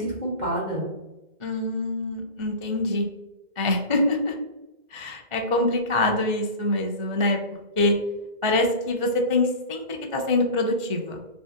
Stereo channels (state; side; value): late; left; 2.1 ms